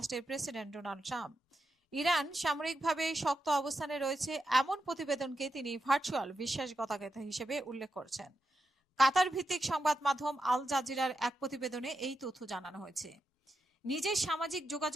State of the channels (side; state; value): both; normal; correlation 0.86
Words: প্রেসিডেন্ট ডোনাল্ড ট্রাম্প। ইরান সামরিকভাবে শক্ত অবস্থানে রয়েছে এমন প্রতিবেদনকে তিনি ভার্চুয়াল বিশ্বাসঘাতকতা হিসেবে উল্লেখ করছেন। কাতার ভিত্তিক সংবাদ মাধ্যম আল জাজিরার এক প্রতিবেদনে এই তথ্য জানানো হয়েছে। নিজের সামাজিক